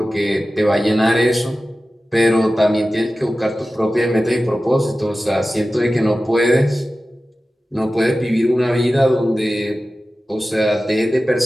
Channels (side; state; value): both; normal; correlation 0.95